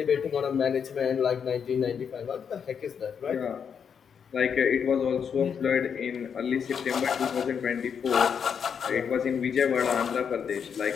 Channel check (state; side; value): quieter; right; 7.1 dB